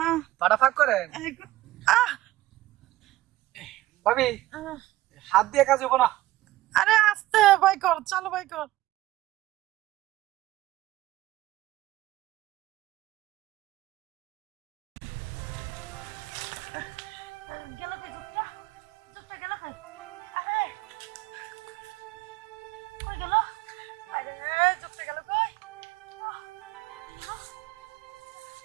পাটা ফাঁক করেন। আহ ভাবি আহ, হাত দিয়ে কাজ হবো না। আরে আস্তে বাই কর চালো বাই কর গেল কই যোগটা যোগটা গেল কই আরে কই গেল আরে যোগটা গেল কই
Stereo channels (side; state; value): left; quieter; 16.6 dB